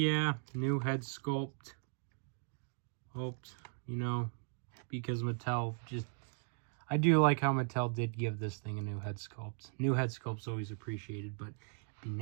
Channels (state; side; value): silent; left; 53 dB below the other